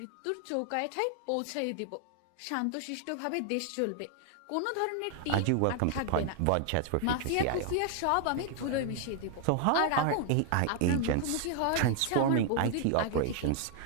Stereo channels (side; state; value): both; different; correlation 0.00